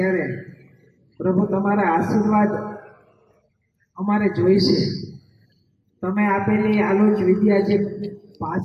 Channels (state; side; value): identical; both; correlation 1.00